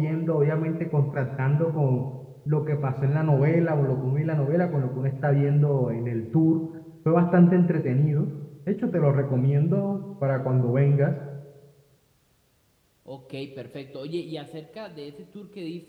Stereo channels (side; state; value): both; identical; correlation 1.00